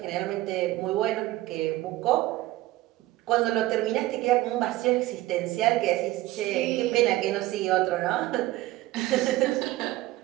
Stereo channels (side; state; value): left; quieter; 17.3 dB